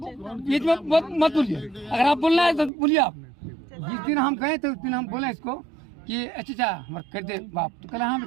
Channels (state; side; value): drops out; left; at 2.7 s